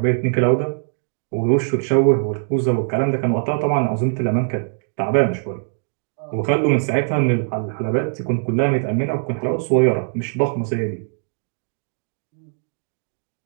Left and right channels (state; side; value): silent; left; digital silence